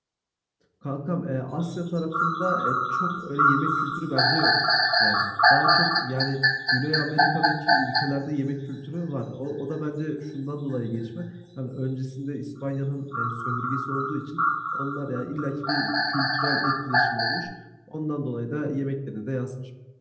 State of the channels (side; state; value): both; identical; correlation 1.00